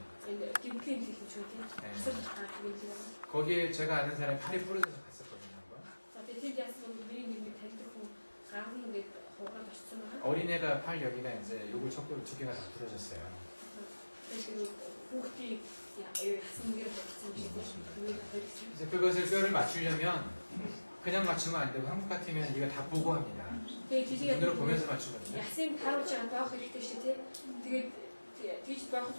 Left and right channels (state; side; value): inverted; both; correlation -1.00